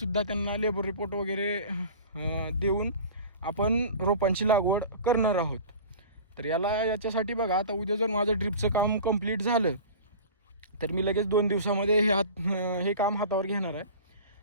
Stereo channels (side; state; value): both; inverted; correlation -0.38